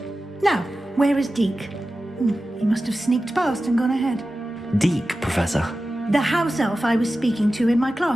Now, where is Deke? He must have sneaked past and gone ahead. Deke, Professor. The house elf I was speaking to in my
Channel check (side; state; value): both; normal; correlation 0.94